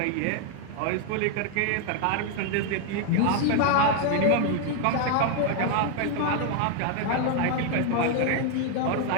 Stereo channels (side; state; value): both; different; correlation 0.00